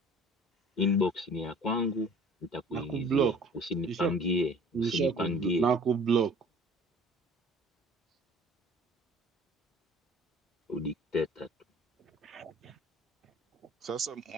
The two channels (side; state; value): both; normal; correlation 0.48